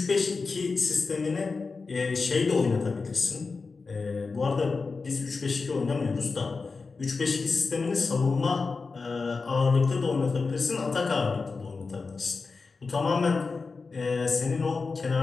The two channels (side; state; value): right; quieter; 4.4 dB